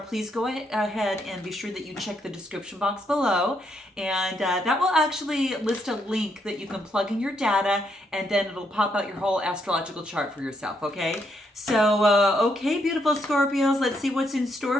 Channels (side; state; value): both; normal; correlation 0.76